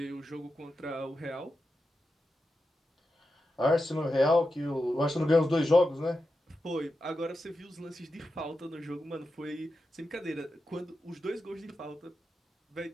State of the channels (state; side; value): normal; both; correlation 0.89